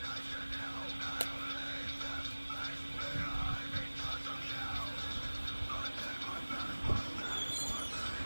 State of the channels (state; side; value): inverted; both; correlation -1.00